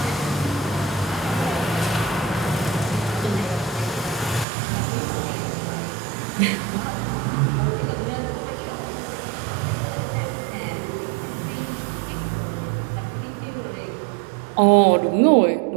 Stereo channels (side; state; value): left; drops out; at 4.5 s